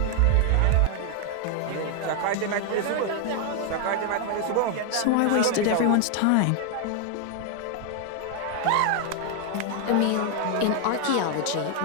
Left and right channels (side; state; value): both; different; correlation 0.00